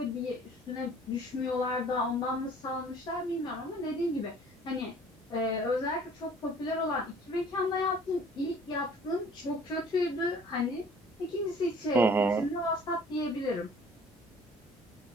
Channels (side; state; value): both; normal; correlation 0.52